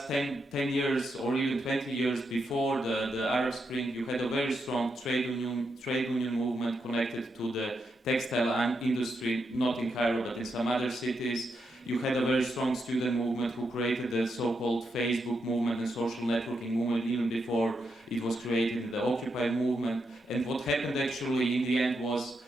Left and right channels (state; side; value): normal; both; correlation 0.83